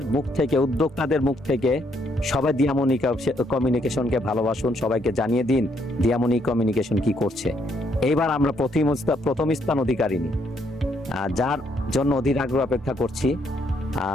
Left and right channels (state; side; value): normal; both; correlation 0.72